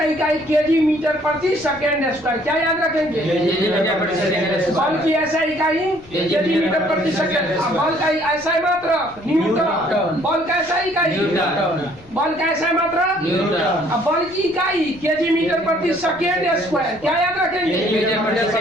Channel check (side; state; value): left; noise; rumble, 24 dB below the sound